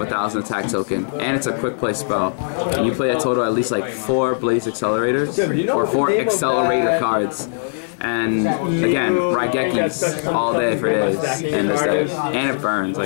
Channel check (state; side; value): silent; right; digital silence